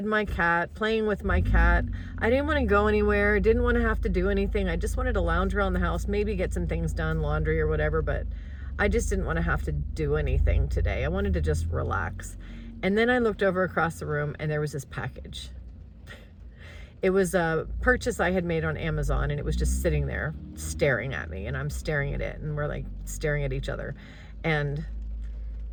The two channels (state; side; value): identical; both; correlation 1.00